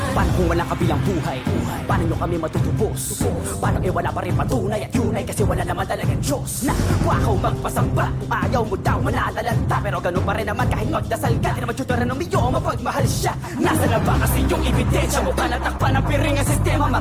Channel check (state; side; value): identical; both; correlation 1.00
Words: Paano kung walang kabilang buhay? Paano nyo kami matutubos? Paano wala pa rin patunay at yun ay kasi wala naman talagang Diyos na wakaw magpasamba. Kung ayaw mo daw manalalanta, pero ganun pa rin naman kahit magdasal ka. Di naman tuturan ng miyo, mapagmahal siya. Nasa na ba kasi yung ebidensya? Mukha natakpan ng piring ang sistema.